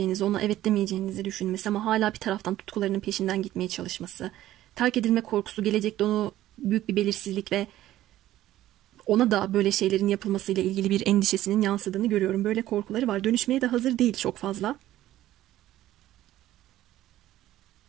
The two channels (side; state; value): left; quieter; 14.1 dB